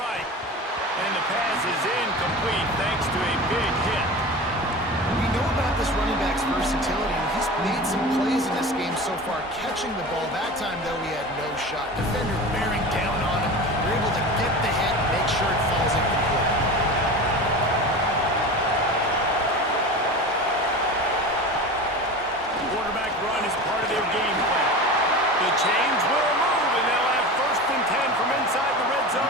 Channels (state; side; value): normal; both; correlation 0.31